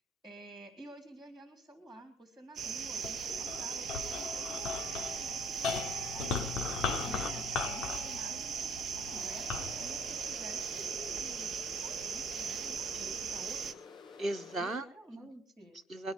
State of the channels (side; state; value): both; normal; correlation 0.57